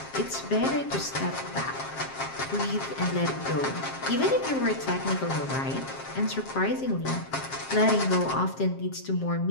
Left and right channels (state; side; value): late; right; 7.5 ms